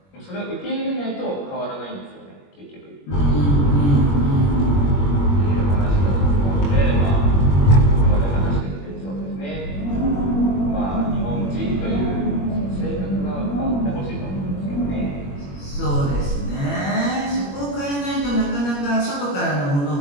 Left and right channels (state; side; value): late; right; 21 ms